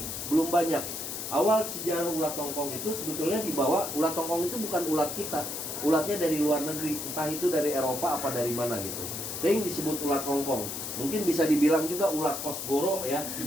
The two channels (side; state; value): left; noise; hiss, 6 dB below the sound